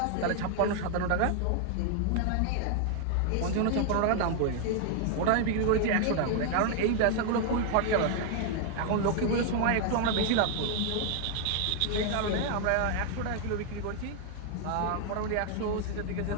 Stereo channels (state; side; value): different; both; correlation 0.00